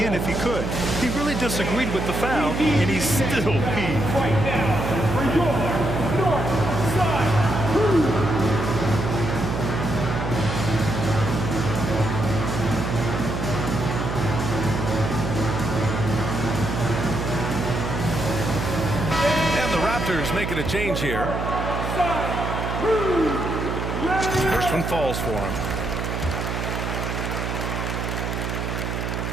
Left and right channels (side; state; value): right; noise; hum, 3 dB below the sound